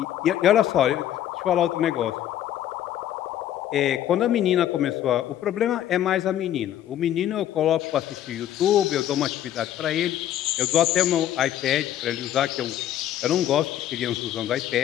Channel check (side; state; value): right; quieter; 11.6 dB